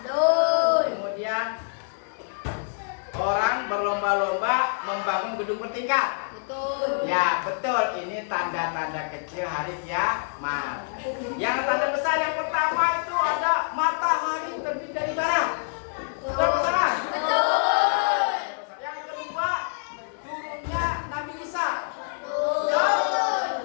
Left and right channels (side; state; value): right; silent; digital silence